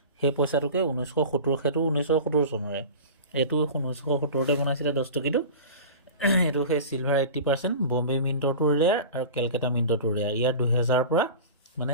সেই পইচাটোকে 1970, সেইটো 1970 চনৰে, এইটো 1970তে বনাইছিলে 10 টকীটো। এইটো সেই চিলভাৰ 80%, বম্বে মিণ্টৰটো ৰেয়াৰ আৰু কেলকাতা মিণ্টৰটো ৰেয়াৰ। ইয়াৰ 2000 পৰা মানে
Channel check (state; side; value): inverted; both; correlation -0.34